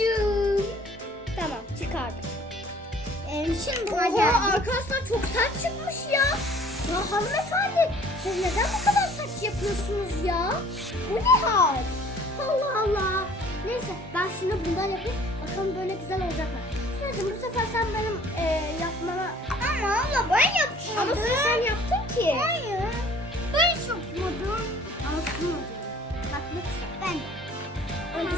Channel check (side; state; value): both; normal; correlation 0.53